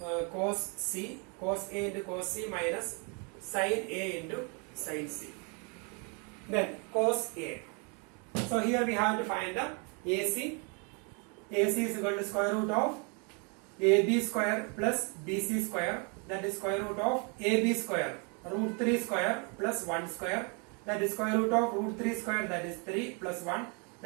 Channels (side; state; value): left; quieter; 34.8 dB